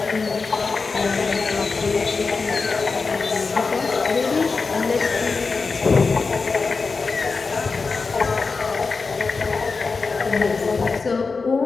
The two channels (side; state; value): right; quieter; 4.4 dB